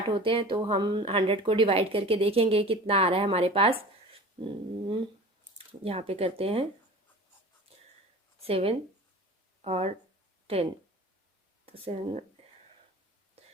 होते हैं, तो हम 100 को डिवाइड करके देखेंगे कितना आ रहा है हमारे पास। यहाँ पे करते हैं 7 और 10, तो 7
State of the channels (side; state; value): both; normal; correlation 0.39